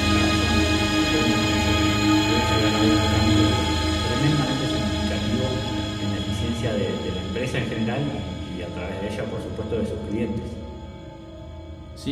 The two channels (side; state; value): both; identical; correlation 1.00